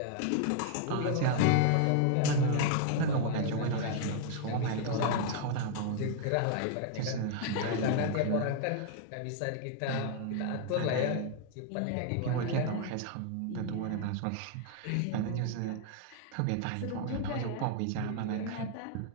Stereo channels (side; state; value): both; different; correlation 0.00